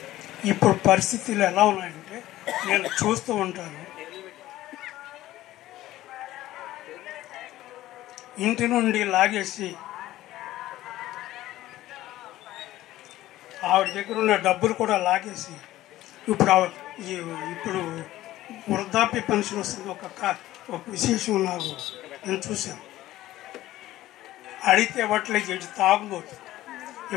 ఇప్పుడు పరిస్థితులు ఎలా ఉన్నాయంటే నేను చూస్తూ ఉంటాను. ఇంటి నుండి లాగేసి ఆవిడ దగ్గర ఉన్న డబ్బులు కూడా లాగేసి ఇప్పుడు వృద్ధాప్య పెన్షన్ వస్తుంది. ఒక విశేషం నాకు నేను చూశాను. అడిగితే ఇవ్వట్లేదు, ఇటు తాగుబోతు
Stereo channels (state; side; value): quieter; right; 15.3 dB